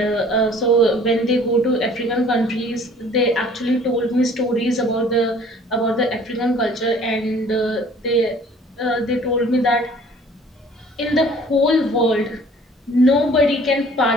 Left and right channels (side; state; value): both; normal; correlation 0.52